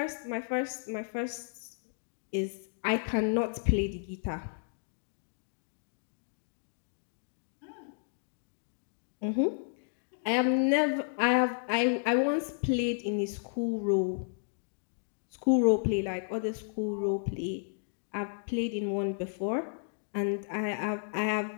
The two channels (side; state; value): right; silent; digital silence